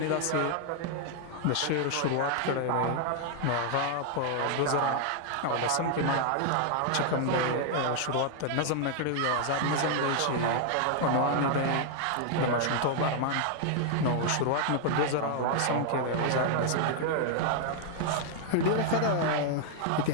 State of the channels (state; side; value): different; both; correlation 0.00